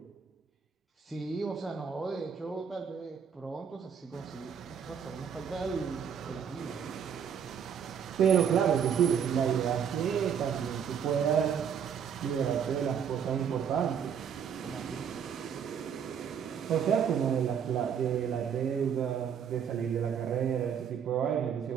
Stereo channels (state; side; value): quieter; left; 7.6 dB